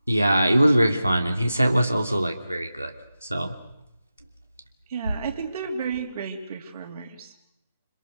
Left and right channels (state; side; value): inverted; both; correlation -0.91